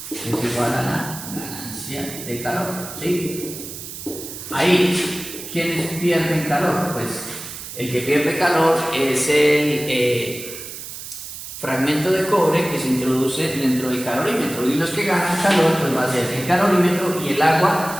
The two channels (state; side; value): noise; right; hiss, 11 dB below the sound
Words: es igual a la ganancia de calor, ¿sí? Ahí, ¿quiénes pierden calor? Pues el que pierde calor es fragmento de cobre que se introduce dentro del calorímetro, y los que ganan calor pues va a ser el calorímetro y el